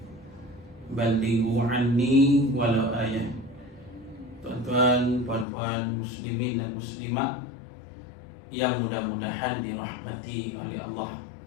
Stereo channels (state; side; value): drops out; right; at 5.5 s